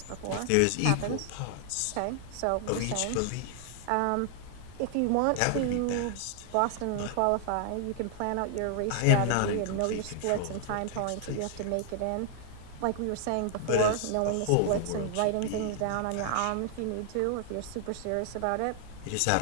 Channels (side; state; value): both; different; correlation 0.00